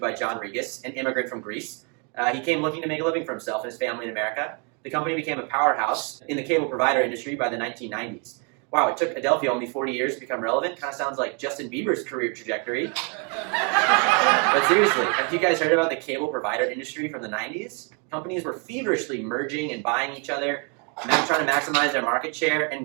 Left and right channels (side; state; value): left; quieter; 36.5 dB